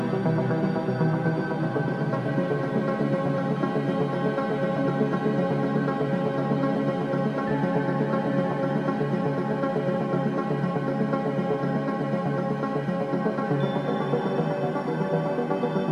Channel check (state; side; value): identical; both; correlation 1.00